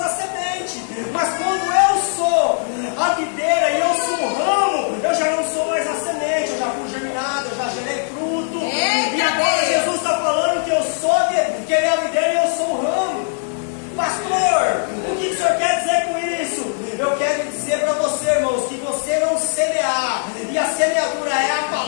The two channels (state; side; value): silent; right; 66 dB below the other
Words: a semente, mas quando eu sou a videira e eu sou o ramo, eu já não sou mais a semente, eu já fui germinado, eu já gerei fruto. E agora Jesus está falando que eu sou, que ele é a videira e eu sou o ramo. Pastor, o que o senhor quer dizer com isso? Eu quero dizer para você, irmãos, que você não semear, e a semeadura é a